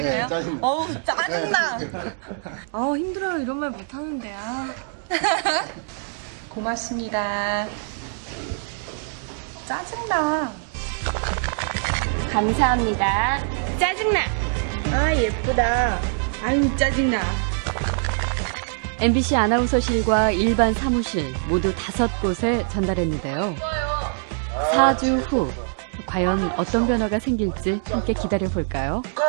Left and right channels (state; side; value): silent; left; 63 dB below the other